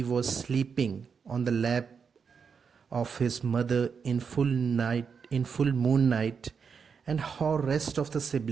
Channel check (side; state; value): left; quieter; 6.1 dB